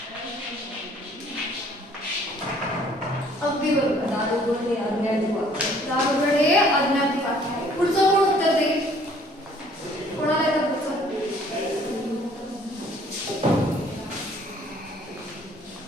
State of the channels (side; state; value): both; normal; correlation 0.58